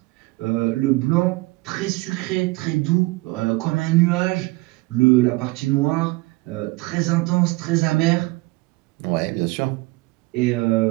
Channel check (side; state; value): left; quieter; 22.8 dB